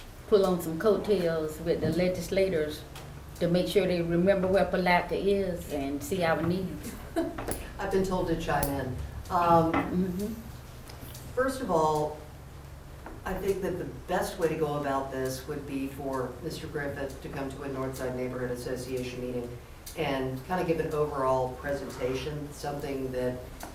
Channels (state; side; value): identical; both; correlation 1.00